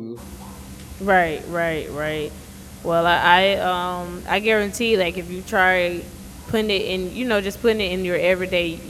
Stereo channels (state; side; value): identical; both; correlation 1.00